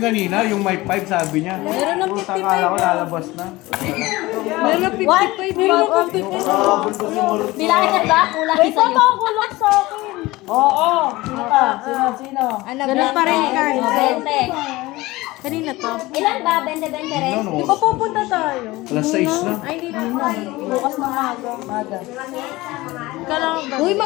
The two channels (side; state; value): right; quieter; 19.9 dB